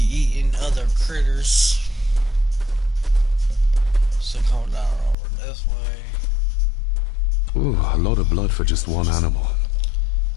eating other critters. So come down over this way. Ooh, a lot of blood for just one animal.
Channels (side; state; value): right; drops out; at 5.2 s